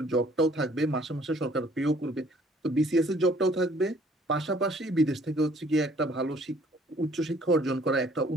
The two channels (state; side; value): normal; both; correlation 0.59